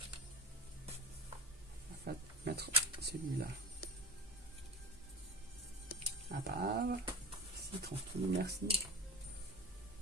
On va mettre celui-là à part. Si, tranquille, merci.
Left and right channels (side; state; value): both; normal; correlation 0.26